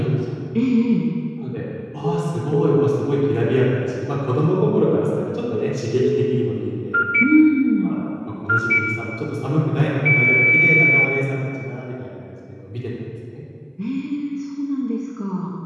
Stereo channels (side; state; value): both; identical; correlation 1.00